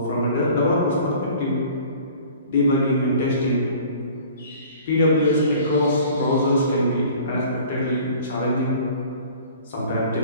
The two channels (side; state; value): both; inverted; correlation -0.47